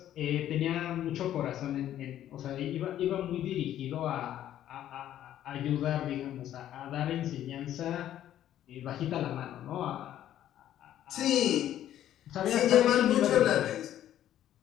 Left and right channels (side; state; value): right; quieter; 11.8 dB